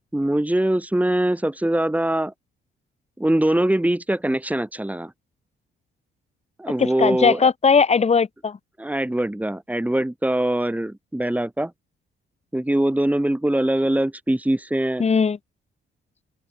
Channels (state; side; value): normal; both; correlation 0.76